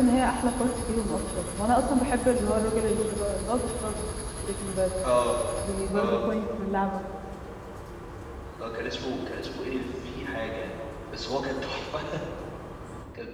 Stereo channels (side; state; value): both; identical; correlation 1.00